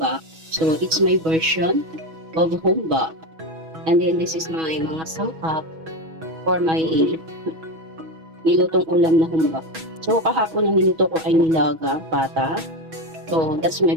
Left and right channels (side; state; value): left; late; 6.2 ms